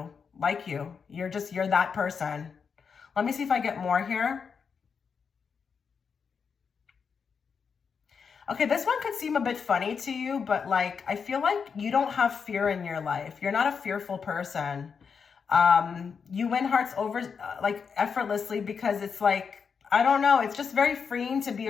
You're that person. Let me see if I get more here. Okay, this one could seem a bit funny to you, but like, I feel like you don't have fear in your life. You're not a fearful person. You win hearts over like effortlessly because it's like, I don't know, it's just very freeing to be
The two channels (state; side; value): quieter; right; 6.1 dB